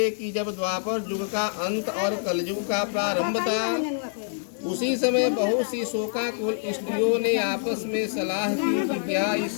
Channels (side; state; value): right; silent; digital silence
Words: कि जब द्वापर युग का अंत और कलयुग का प्रारंभ था, उसी समय बहुत सी शोकाकुल स्त्रियों ने आपस में सलाह की कि क्या